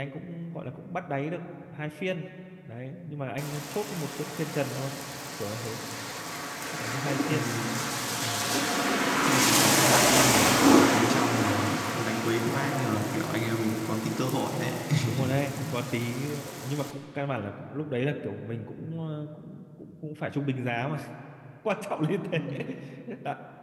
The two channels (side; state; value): both; identical; correlation 1.00